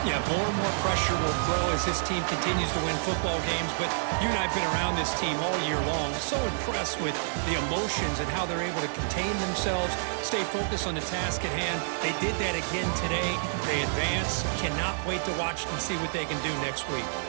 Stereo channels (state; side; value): silent; left; digital silence